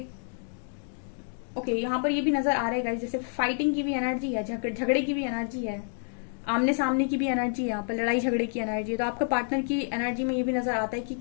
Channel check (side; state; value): right; silent; 59 dB below the other